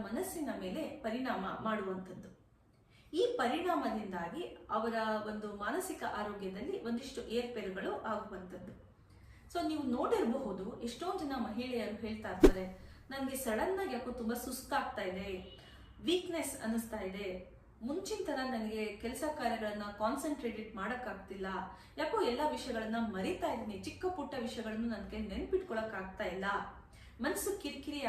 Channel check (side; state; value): both; identical; correlation 1.00